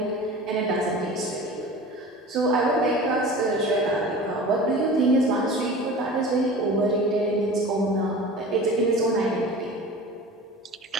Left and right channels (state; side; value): normal; both; correlation 0.37